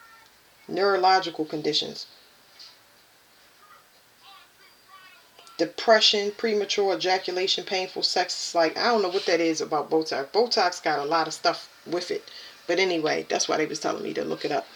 Neurological conditions. Depression, premature ejaculation, painful sex. It's like, I don't know what that is about Botox. Botox got a lot of stuff with it. But anyway, that's why they was telling me to look it up.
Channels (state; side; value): identical; both; correlation 1.00